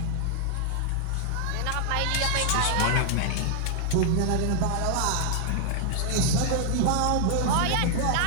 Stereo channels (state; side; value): different; both; correlation -0.01